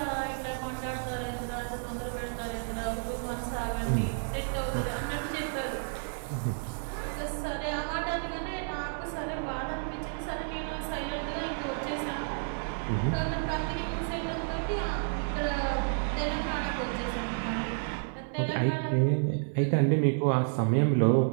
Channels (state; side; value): silent; left; digital silence